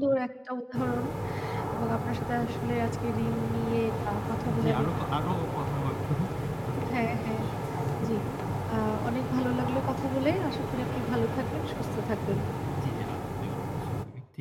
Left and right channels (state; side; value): identical; both; correlation 1.00